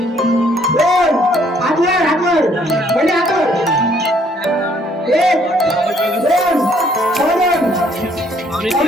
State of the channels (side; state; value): both; normal; correlation 0.64